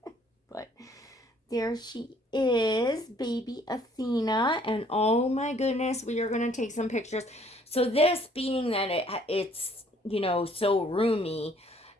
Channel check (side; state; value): both; normal; correlation 0.61